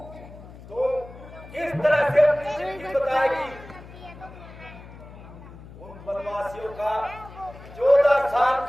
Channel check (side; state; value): left; noise; hum, 17 dB below the sound